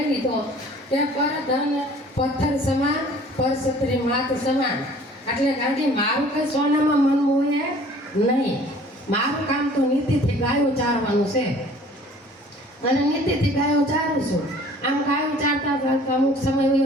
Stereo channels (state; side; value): normal; both; correlation 0.51